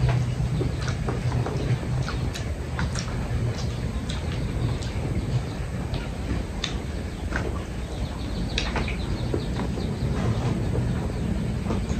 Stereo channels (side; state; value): both; identical; correlation 1.00